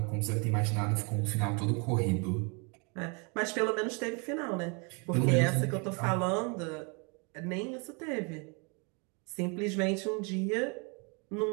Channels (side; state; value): left; quieter; 33.1 dB